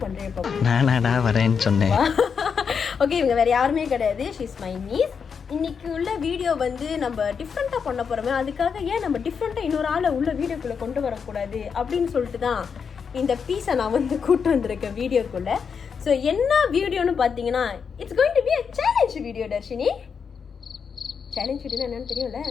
பண்றேன் இப்போ. நானாடா வரேன்னு சொன்னேன். ஓகே, இவங்க வேற யாருமே கிடையாது. She is my niece. இன்னைக்கு உள்ள வீடியோ வந்து நம்ம டிஃப்ரெண்டா பண்ண போறோமே, அதுக்காக ஏன் நம்ம டிஃப்ரெண்டா இன்னொரு ஆளை உள்ள வீடியோக்குள்ள கொண்டு வரக்கூடாது அப்படின்னு சொல்லிட்டு தான் இந்த பீஸை நான் வந்து கூட்டு வந்திருக்கேன் வீடியோக்குள்ள. ஸோ என்ன வீடியோன்னு பார்த்தீங்கன்னா, it's going to be a challenge video. Dharshini, challenge video என்னன்னு தெரியும்ல?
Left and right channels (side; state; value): right; quieter; 6.3 dB